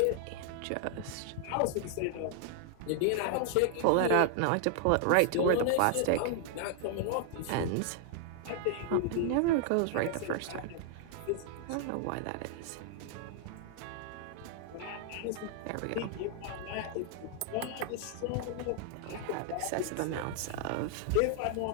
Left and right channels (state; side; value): different; both; correlation 0.00